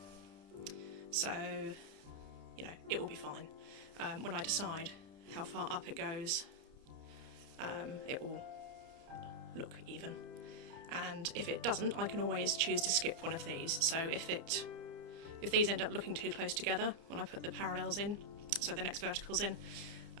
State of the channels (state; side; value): late; left; 30 ms